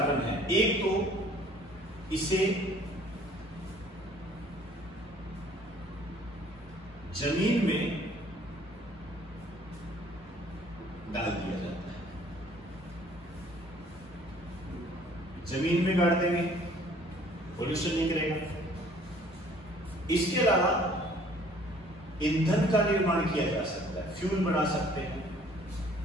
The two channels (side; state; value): both; normal; correlation 0.56